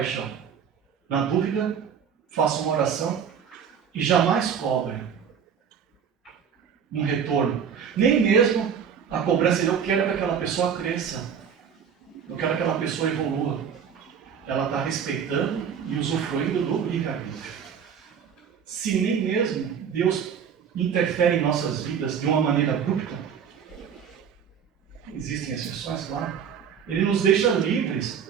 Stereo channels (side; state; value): left; quieter; 7.5 dB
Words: Na dúvida, faça uma oração e jamais cobre um retorno. Nem mesmo a cobrança de eu quero que aquela pessoa cresça. Eu quero que aquela pessoa evolua. Ela está respeitando e usufruindo do livre-arbítrio. Se nem mesmo Deus interfere em nossas vidas de uma maneira abrupta, existem exceções, claro, Ele nos deixa